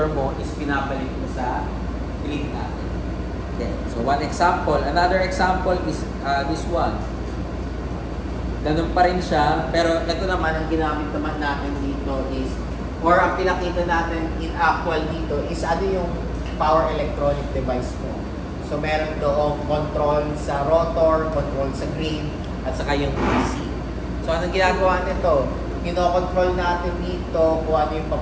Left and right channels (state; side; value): identical; both; correlation 1.00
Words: mo is pinabalik mo sa grid natin. Okay. So one example. Another example is this one. Ganun pa rin siya, pero ito naman ang ginamit naman natin dito is, or ang pinakita natin in actual dito is ano yung power electronic device mo. So meron doong control sa rotor, control sa grid, at saka yung DC. So anong ginagawa nito? Kino-control natin dito kung ano yung